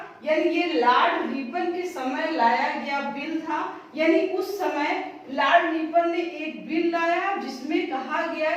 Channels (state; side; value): identical; both; correlation 1.00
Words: यानी ये लॉर्ड रिपन के समय लाया गया बिल था। यानी उस समय लॉर्ड रिपन ने एक बिल लाया जिसमें कहा गया